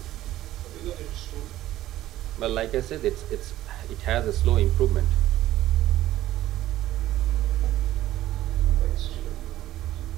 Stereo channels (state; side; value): quieter; left; 14.3 dB